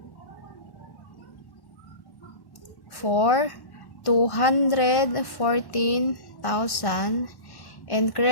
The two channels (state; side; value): late; right; 1.1 ms